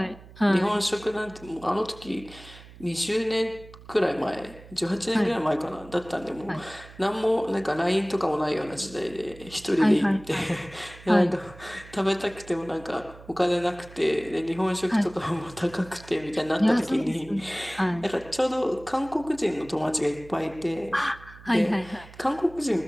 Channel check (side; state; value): right; noise; hum, 19 dB below the sound